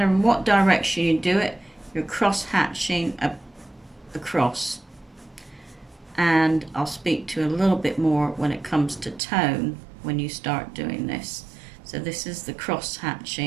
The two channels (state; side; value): drops out; left; at 9.2 s